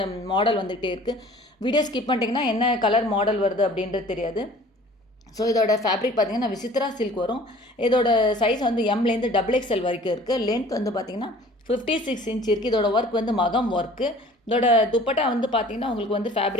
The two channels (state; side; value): normal; both; correlation 0.49